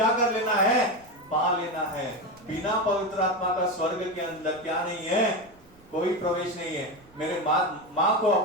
कर लेना है? पा लेना है। बिना पवित्र आत्मा का स्वर्ग के अंदर क्या नहीं है? कोई प्रवेश नहीं है। मेरे माँ को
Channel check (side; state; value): right; noise; rumble, 27 dB below the sound